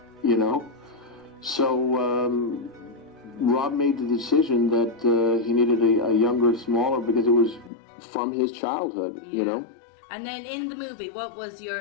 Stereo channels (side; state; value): right; drops out; at 7.7 s